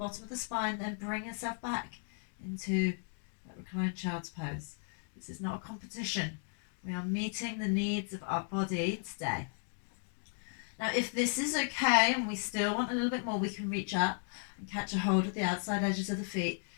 of the spine, then bring yourself back into that reclined child's pose. This is not a competition. We are meeting the needs of our body today. Now, if this is okay and we still want a little bit more, we can reach up and catch a hold of the outside edges of the feet,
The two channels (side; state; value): right; silent; 54 dB below the other